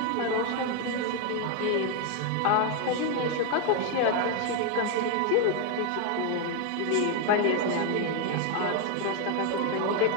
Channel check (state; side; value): different; both; correlation 0.01